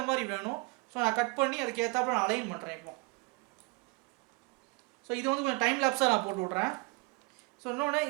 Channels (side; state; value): left; quieter; 28.4 dB